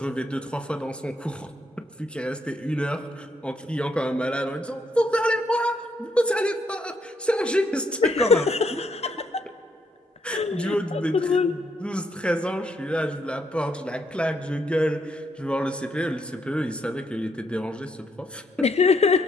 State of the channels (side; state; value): both; normal; correlation 0.75